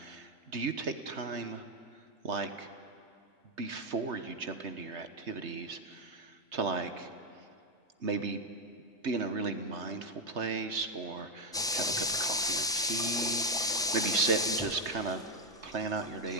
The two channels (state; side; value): normal; both; correlation 0.05